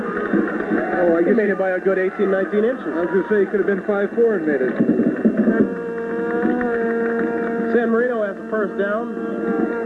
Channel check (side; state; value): both; identical; correlation 1.00